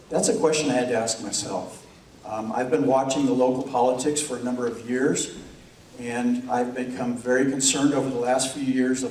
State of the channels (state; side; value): identical; both; correlation 1.00